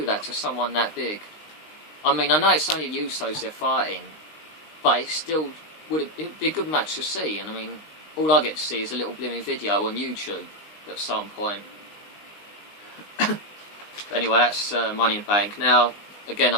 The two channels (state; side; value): late; right; 19 ms